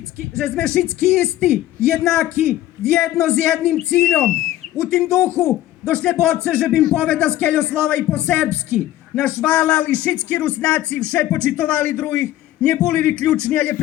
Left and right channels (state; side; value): quieter; right; 14.2 dB